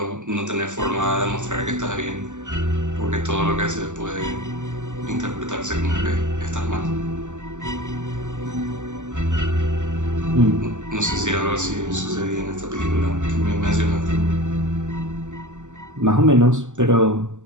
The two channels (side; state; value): left; late; 0.85 ms